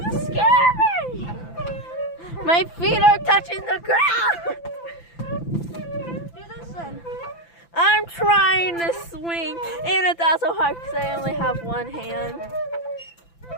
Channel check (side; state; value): right; late; 5.9 ms